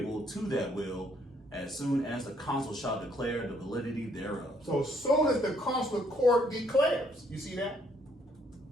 to that will as soon as the consul shall declare the validity thereof. So as soon as the consular court declares, you see that?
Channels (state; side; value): normal; both; correlation 0.68